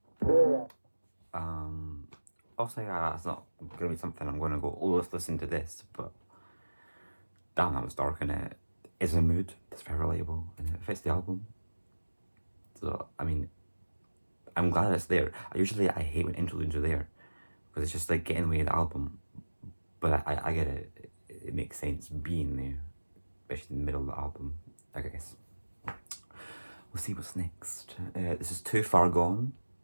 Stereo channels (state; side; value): inverted; both; correlation -1.00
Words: Also, yeah, it's not gonna be something I'm gonna go, oh, let's listen to this, but damn, that was dark and it is a mood that's very relatable and it fits the album. So, I mean, I'm glad it's there. I hate when interludes are there because it's just like getting in the way of the album, but I get it. It makes sense being there, especially in the middle of the album, I guess. We'll see what's next. This is Too Far Gone.